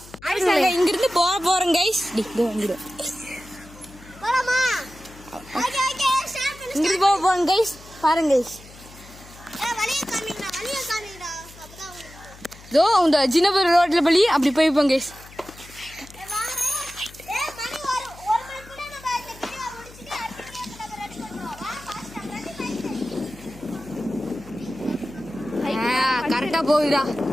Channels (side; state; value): left; noise; hum, 20 dB below the sound